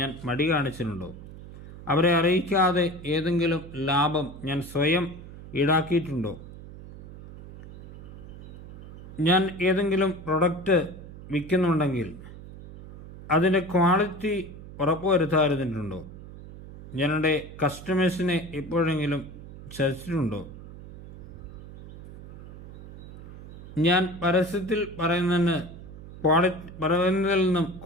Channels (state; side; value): noise; right; hum, 15 dB below the sound